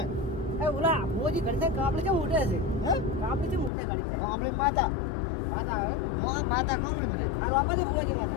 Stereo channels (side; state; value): right; drops out; at 3.7 s